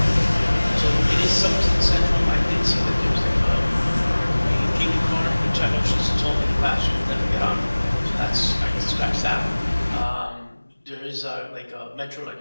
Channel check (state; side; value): inverted; both; correlation -1.00